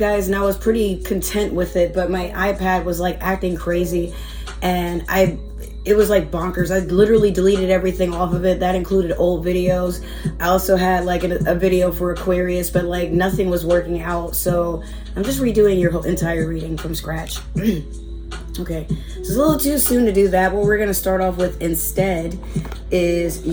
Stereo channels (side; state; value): both; identical; correlation 1.00